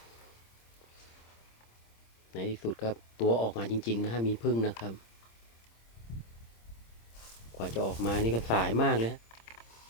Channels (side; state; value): right; late; 26 ms